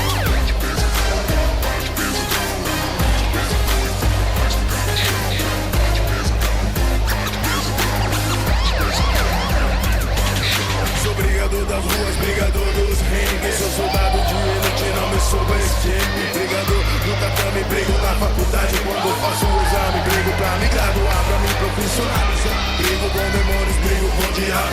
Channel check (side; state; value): both; identical; correlation 1.00